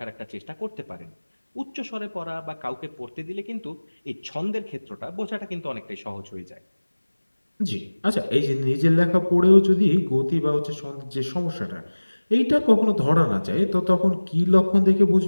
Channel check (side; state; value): both; inverted; correlation -1.00